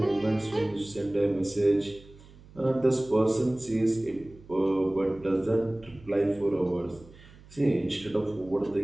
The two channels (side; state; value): right; noise; hum, 23 dB below the sound